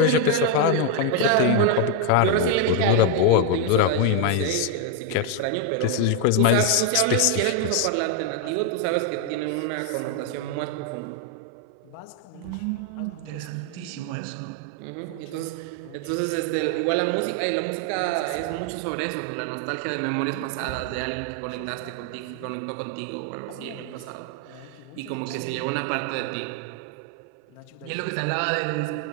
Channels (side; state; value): both; different; correlation 0.01